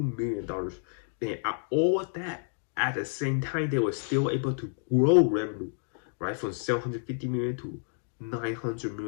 million dollars. And all that at the same time, they were still able to grow revenue, right, from 750 million to 900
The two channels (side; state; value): right; silent; digital silence